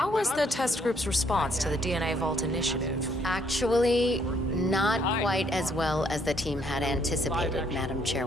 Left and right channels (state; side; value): normal; both; correlation 0.69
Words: was the test group's response to the DNA Vault initiative? Actually, not quite as well as the team had anticipated, Madam